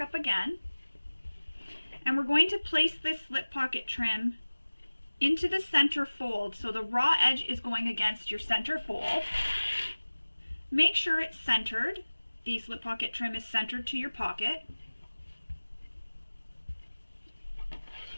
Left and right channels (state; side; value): inverted; both; correlation -1.00